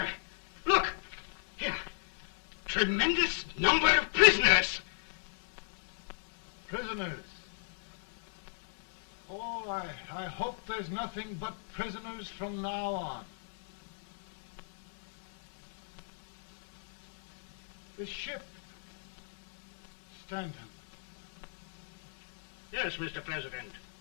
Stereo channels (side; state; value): right; silent; 55 dB below the other